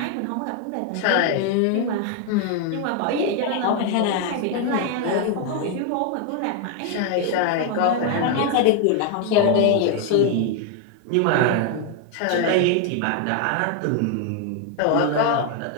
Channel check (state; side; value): different; both; correlation 0.01